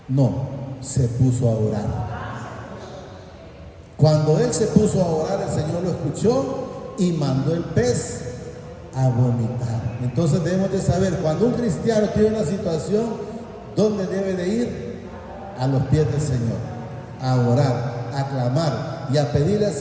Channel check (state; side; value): identical; both; correlation 1.00